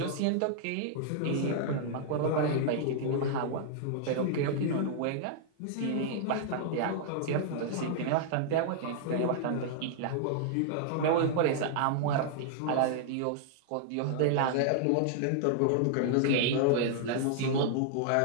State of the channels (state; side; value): different; both; correlation -0.01